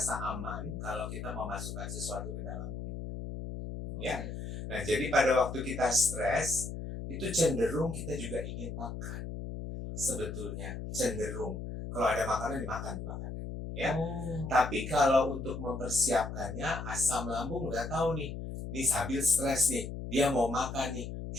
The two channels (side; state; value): left; noise; hum, 7 dB below the sound